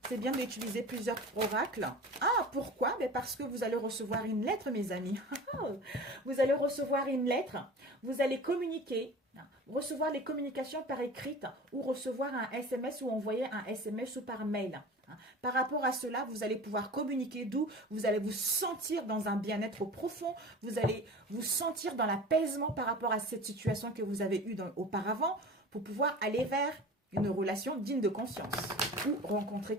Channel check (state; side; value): normal; both; correlation 0.37